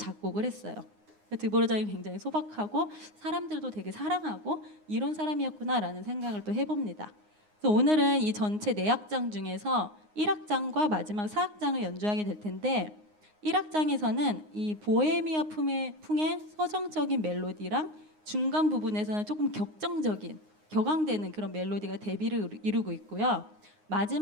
했어요. 드보르장이 굉장히 소박하고 사람들도 되게 사랑하고 이런 사람이었구나라는 생각을 또 해봅니다. 그래서 오늘은 이 전체 4악장 중에서 1악장과 마지막 4악장을 연주하게 될 텐데 1악장에서는 이 보헤미아 풍의 서정적인 멜로디랑 중간 부분에서는 조금 격앙되는 그런 멜로디가 대비를 이루고 있고요.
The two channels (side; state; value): left; late; 9.6 ms